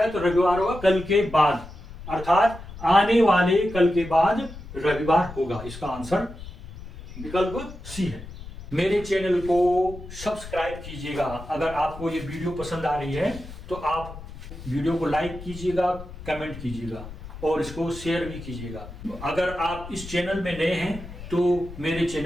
है, तो रविवार होगा कल के बाद, अर्थात आने वाले कल के बाद रविवार होगा। इसका आंसर विकल्प सी है। मेरे चैनल को सब्सक्राइब कीजिएगा। अगर आपको ये वीडियो पसंद आ रही है तो आप वीडियो को लाइक कीजिएगा, कमेंट कीजिएगा और इसको शेयर भी कीजिएगा। अगर आप इस चैनल में नए हैं तो मेरे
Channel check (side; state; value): left; noise; rumble, 14 dB below the sound